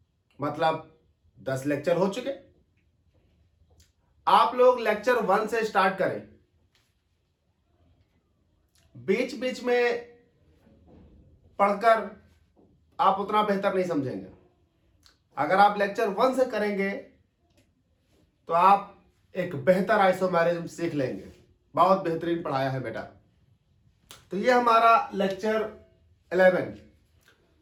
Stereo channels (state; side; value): identical; both; correlation 1.00